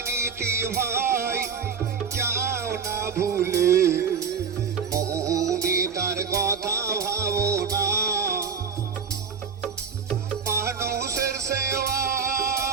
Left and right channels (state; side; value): quieter; left; 6.0 dB